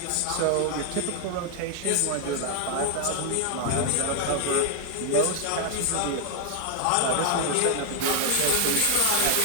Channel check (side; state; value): both; different; correlation 0.00